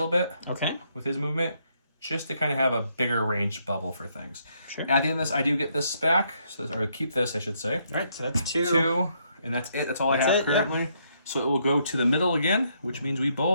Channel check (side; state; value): both; inverted; correlation -0.73